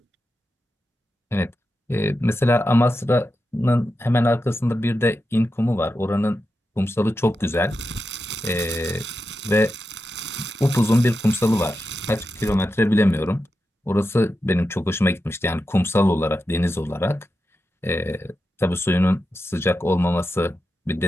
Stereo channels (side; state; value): both; normal; correlation 0.89